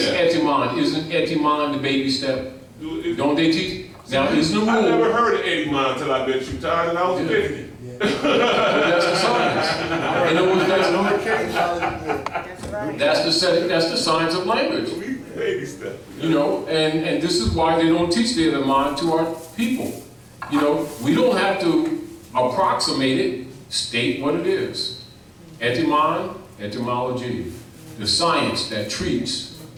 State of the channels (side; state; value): both; identical; correlation 1.00